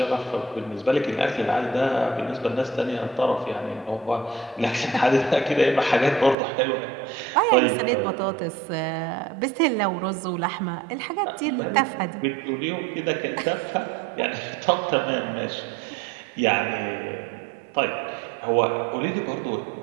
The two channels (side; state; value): left; drops out; at 6.4 s